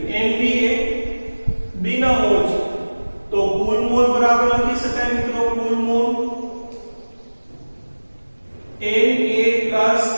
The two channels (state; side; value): inverted; both; correlation -1.00